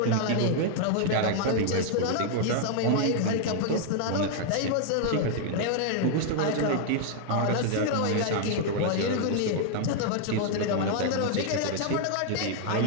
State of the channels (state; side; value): different; both; correlation 0.00